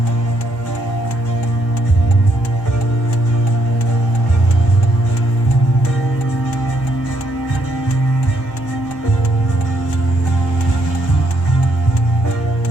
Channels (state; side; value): normal; both; correlation 0.72